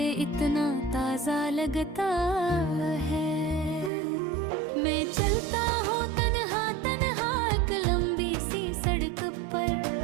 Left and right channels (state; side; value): drops out; left; at 3.9 s